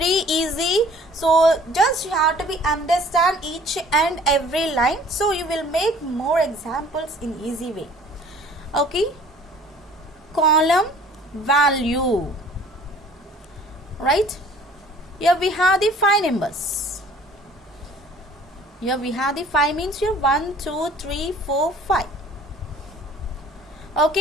easy. So just you have to be understand each and every line. So you will make more examples in easy way. Okay, column value, right? Here we have the 5 numbers. Here we have the 5 means here 1, 2, 3, 4, 5.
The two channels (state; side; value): normal; both; correlation 0.52